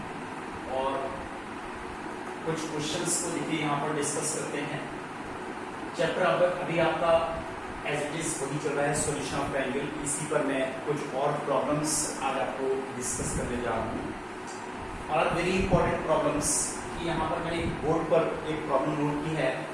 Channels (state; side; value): identical; both; correlation 1.00